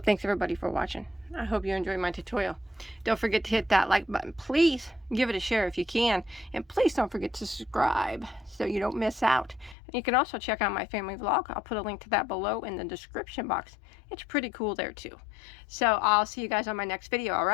everybody for watching. I hope you enjoyed my tutorial. Don't forget to hit that like button. Please give it a share if you can. And please don't forget to subscribe so you don't miss out. And you can also check out my family vlog. I'll put a link to that below in the description box. It's pretty cool there too. So I'll see you guys on my next video,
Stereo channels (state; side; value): drops out; right; at 9.8 s